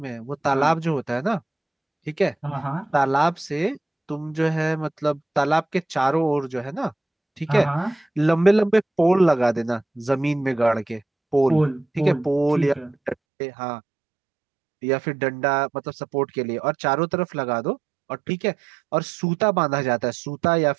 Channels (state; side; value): drops out; left; at 13.2 s